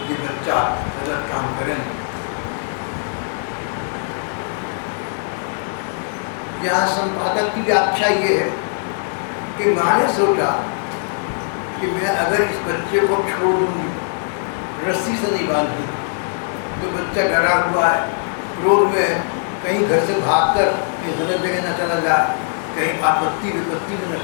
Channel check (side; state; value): right; silent; digital silence